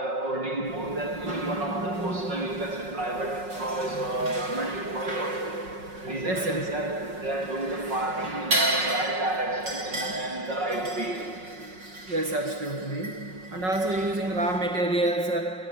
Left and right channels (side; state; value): left; late; 5.4 ms